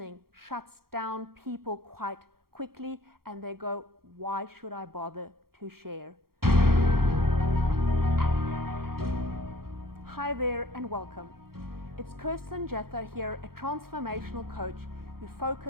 shuts down people quite quickly and they go, why should I bother to share? Hi there and welcome. It's Kirsten Jethro here, a transformational coach who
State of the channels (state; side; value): late; left; 0.94 ms